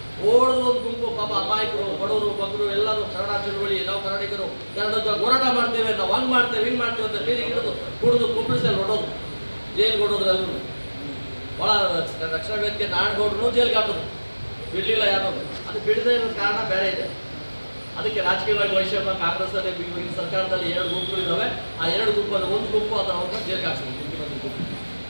ಒಂದು ಗುಂಪು ಪಾಪ ಅಮಾಯಕರು, ಬಡವರು, ಮಕ್ಕಳು ಎಲ್ಲರೂ ಕನ್ನಡ ಚಳುವಳಿ, ನಾವು ಕನ್ನಡಿಗರು ಕನ್ನಡದ ಹೋರಾಟ ಮಾಡ್ತೇವೆ, ನಾವು ಹಂಗೆ ಮಾಡ್ತೇವೆ, ಹಿಂಗೆ ಮಾಡ್ತೇವೆ ಅಂತ ಬೀದಿಗೆ ಹಿಡಿದು ಕುಡಿದು ಕುಂಬಿಸಲ್ಲಿ ಹೊಡೋದು, ಜೈಲಿಗೆ ಹೊಡೋದ್ರು. ಎಲ್ಲರೂ ಭಾಳ ರಕ್ಷಣಾ ವೇದಿಕೆ ನಾಡಗೌಡರು ಜೈಲಿಗೆ ಹಾಕೋದು, ಬಿಡಲಿಲ್ಲ ಯಾರು. ಅದು ಬಿಡದೇ ಇರೋ ಕಾರಣ ಬೇರೆ ಇದೆ. ಅದಕ್ಕೆ ರಾಜಕೀಯವಾಗಿ ವೈಷಮ್ಯ ಕಾಂಗ್ರೆಸ್ಸಲ್ಲಿ ಈಗಿನ ಸರ್ಕಾರದಲ್ಲಿ 2 ಗುಂಪುಗಳಿದ್ದಾವೆ. ಆ 2 ಗುಂಪಲ್ಲಿ ಒಂದು ಗುಂಪು ಅದನ್ನು ಜೈಲಿಗೆ ಹಾಕ್ಸಿದ್ರು, ಮುಖ್ಯಮಂತ್ರಿ ಗುಂಪು.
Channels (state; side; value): inverted; both; correlation -1.00